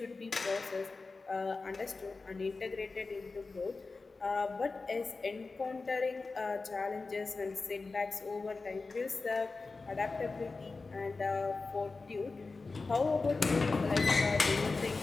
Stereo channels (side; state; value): right; quieter; 3.9 dB